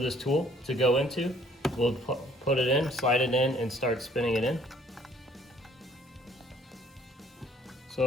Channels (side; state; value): both; normal; correlation 0.59